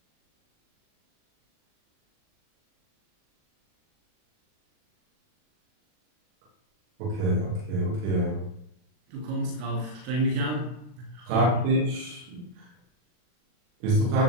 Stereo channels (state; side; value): late; left; 40 ms